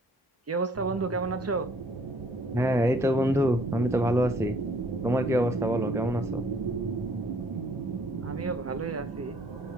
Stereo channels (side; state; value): both; normal; correlation 0.60